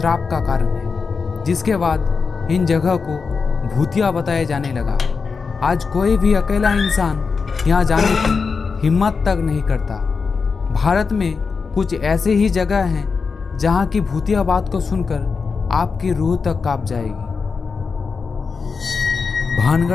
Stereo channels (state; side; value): quieter; right; 5.1 dB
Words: का कारण है, जिसके बाद इन जगह को भूतिया बताया जाने लगा। आज कोई भी अकेला इंसान यहाँ जाने की हिम्मत तक नहीं करता। भारत में कुछ ऐसे ही जगह हैं जहाँ की भूतिया बात को सुनकर आपकी रूह तक कांप जाएगी।